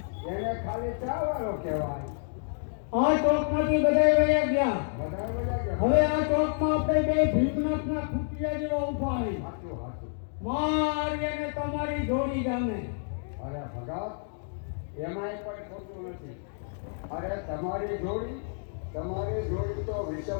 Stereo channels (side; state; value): right; silent; digital silence